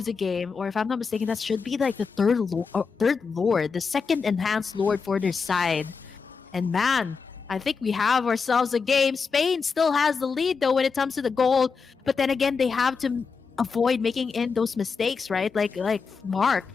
the game. Or if I'm not mistaken, that should be like the third Lord, the second enhanced Lord for their side. And man, I think we have ourselves a game. Spain still has the lead though when it comes to the gold, but then again they have to avoid making in those mistakes, right? Like Mark,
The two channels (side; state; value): right; quieter; 5.3 dB